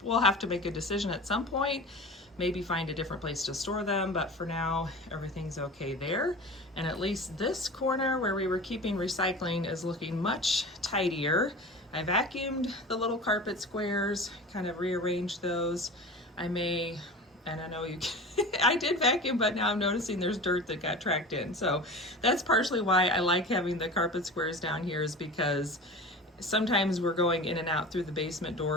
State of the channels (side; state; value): both; normal; correlation 0.34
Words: will have to make a decision at some point, maybe find a different place to store them, but for now everything's okay there. And at least this corner where we were keeping recycling is looking much tidier. I vacuumed the little carpet squares, kind of rearranged those. And I know you I did vacuum, but now I'm noticing there's dirt that got tracked in. So that's partially why I like having the carpet squares down here, is because sometimes we're going in and out through the basement